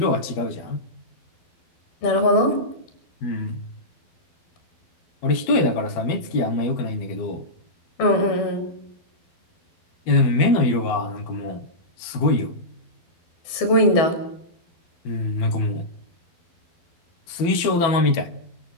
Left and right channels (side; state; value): right; late; 12 ms